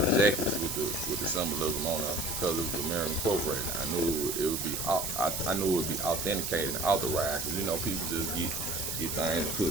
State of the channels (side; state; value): right; noise; hiss, 3 dB below the sound